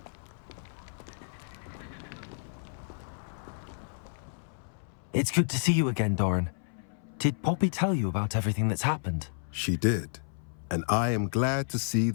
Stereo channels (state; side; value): silent; right; 57 dB below the other